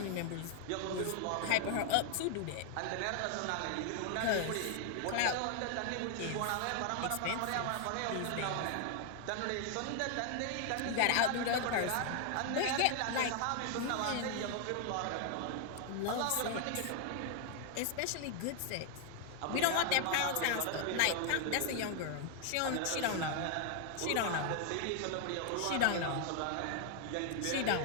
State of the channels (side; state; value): both; different; correlation 0.00